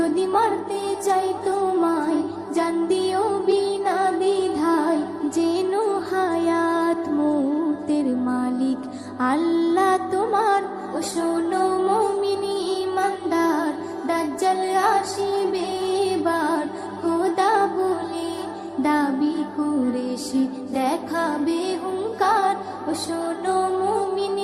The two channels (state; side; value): identical; both; correlation 1.00